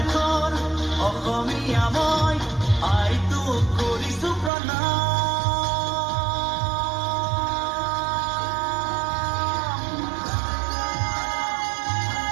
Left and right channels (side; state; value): left; drops out; at 4.5 s